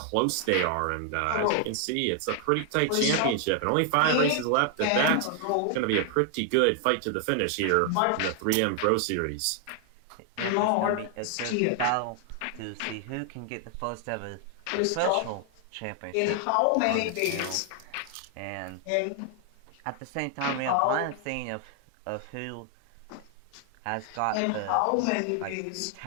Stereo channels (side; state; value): both; different; correlation 0.00